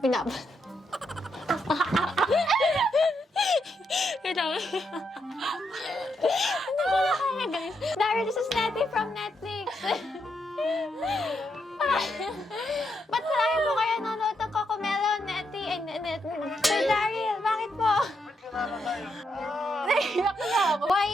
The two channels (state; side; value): normal; both; correlation 0.80